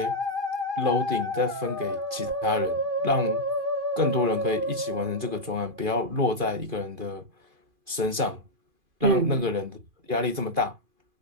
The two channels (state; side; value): late; left; 2.4 ms